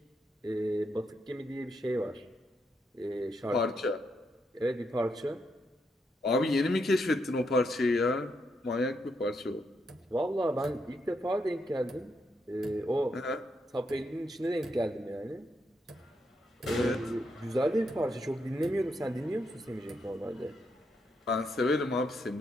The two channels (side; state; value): both; normal; correlation 0.80